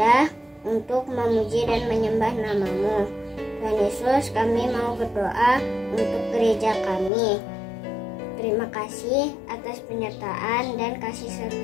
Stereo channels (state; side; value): drops out; right; at 7.1 s